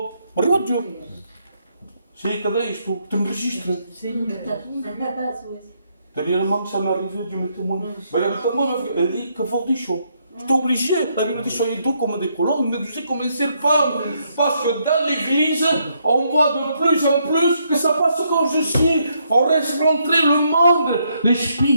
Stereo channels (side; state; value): both; inverted; correlation -0.75